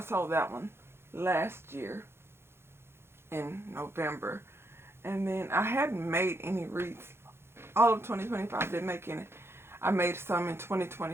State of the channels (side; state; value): left; late; 0.12 ms